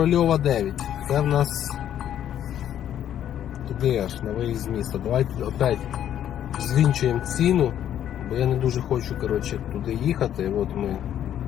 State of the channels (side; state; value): right; quieter; 10.6 dB